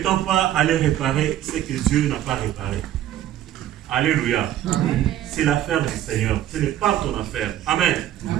pas aller réparer ce que Dieu n'a pas réparé. Alléluia. C'est l'affaire du Seigneur. Ce n'est pas ton affaire. Amen.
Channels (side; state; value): left; quieter; 12.2 dB